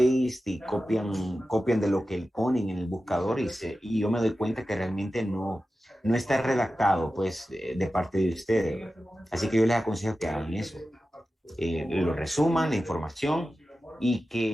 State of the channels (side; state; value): both; normal; correlation 0.93